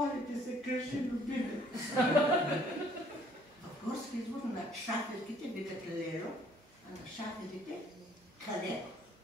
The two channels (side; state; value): both; normal; correlation 0.60